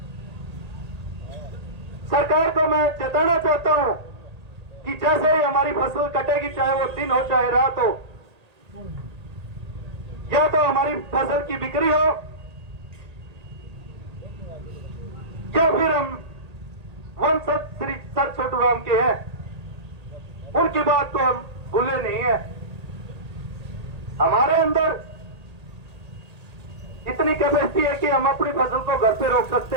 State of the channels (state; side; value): late; left; 1.8 ms